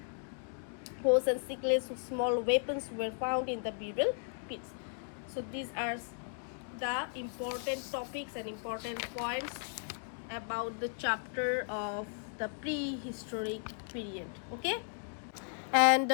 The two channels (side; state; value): right; silent; 54 dB below the other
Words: sickles, small weapons were found in the burial pits. So these are the important topics and important points about the chapter of the prehistoric period. Okay, and